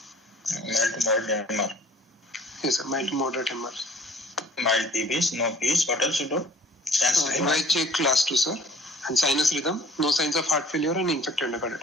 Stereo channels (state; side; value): normal; both; correlation 0.51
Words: Mild to moderate MR. Yes, sir. Mild to moderate MR. Mild PVs, no PVs. What else you do? NYHA class 2, sir. And sinus rhythm, no signs of heart failure and infected